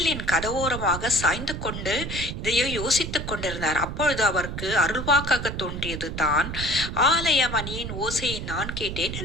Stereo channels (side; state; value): right; noise; rumble, 6 dB below the sound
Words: கதவோரமாக சாய்ந்து கொண்டு இதையோ யோசித்துக் கொண்டிருந்தார். அப்பொழுது அவருக்கு அருள்வாக்காக தோன்றியது தான் ஆலய மணியின் ஓசையை நான் கேட்டேன்